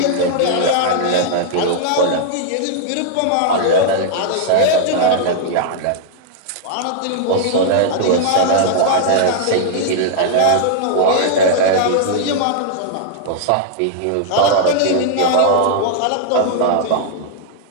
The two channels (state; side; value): different; both; correlation -0.01